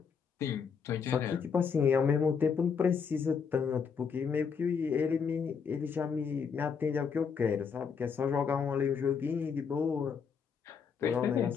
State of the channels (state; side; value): quieter; right; 6.2 dB